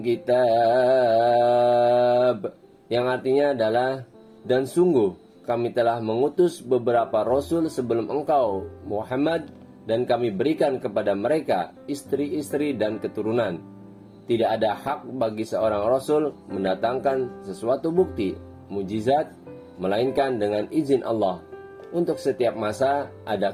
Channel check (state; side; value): identical; both; correlation 1.00